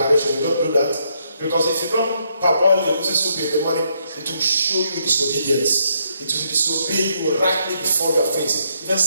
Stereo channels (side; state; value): both; inverted; correlation -0.75